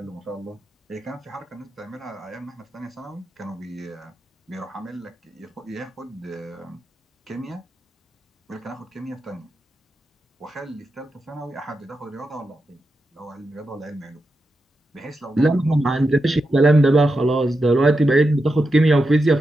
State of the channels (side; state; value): both; normal; correlation 0.88